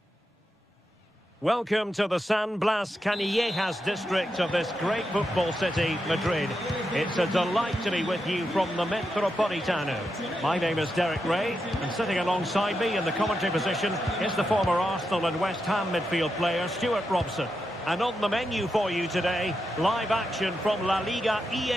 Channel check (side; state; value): both; normal; correlation 0.86